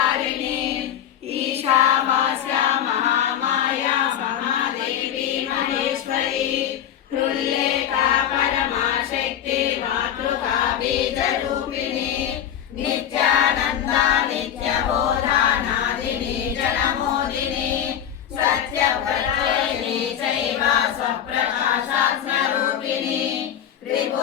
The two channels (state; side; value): quieter; right; 10.0 dB